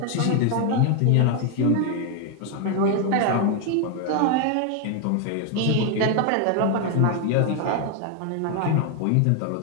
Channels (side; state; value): both; different; correlation 0.01